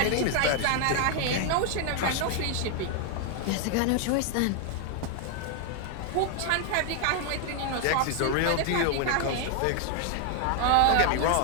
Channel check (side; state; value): both; different; correlation 0.00